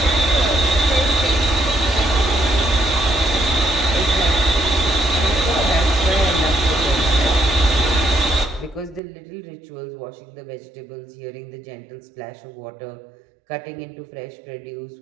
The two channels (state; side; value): drops out; left; at 9.0 s